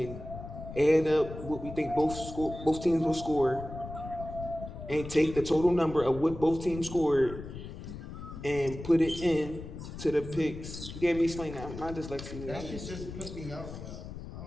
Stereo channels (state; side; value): noise; left; rumble, 11 dB below the sound